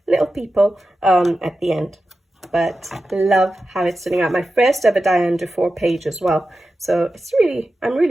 little people at the end. But love how it's turning out. My first ever Diane Dufour page as well, so it's really, I'm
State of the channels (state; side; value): normal; both; correlation 0.92